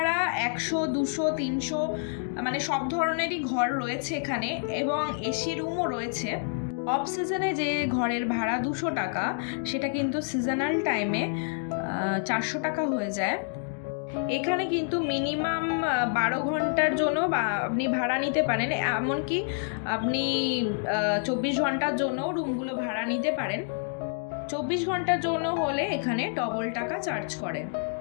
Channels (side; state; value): right; silent; digital silence